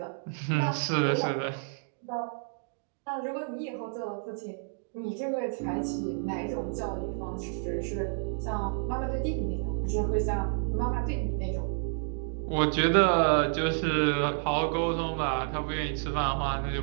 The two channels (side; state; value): left; silent; digital silence